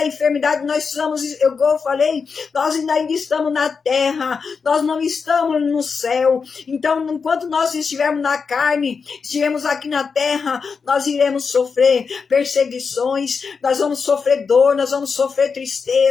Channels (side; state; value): right; quieter; 5.4 dB